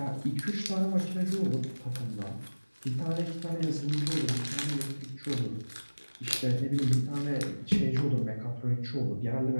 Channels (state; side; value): inverted; both; correlation -1.00